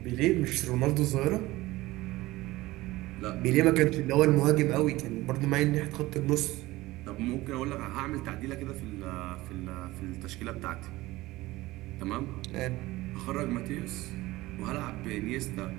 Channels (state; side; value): quieter; left; 18.7 dB